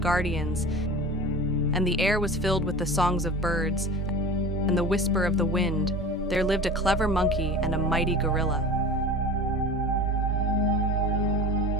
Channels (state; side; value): normal; both; correlation 0.35